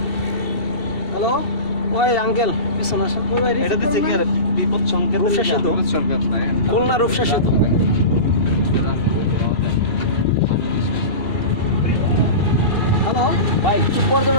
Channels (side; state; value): right; late; 2.7 ms